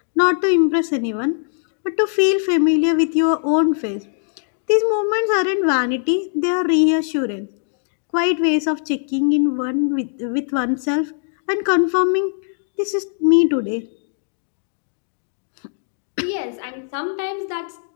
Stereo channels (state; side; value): silent; right; digital silence